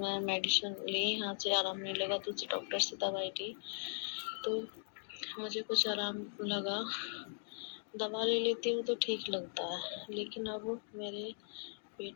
मेडिसिन ली, यहाँ से आराम नहीं लगा, दूसरे डॉक्टर से दवाई ली तो मुझे कुछ आराम लगा। दवा ले लेती हूँ तो ठीक लगता है, लेकिन अब मेरे पेट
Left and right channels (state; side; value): silent; right; digital silence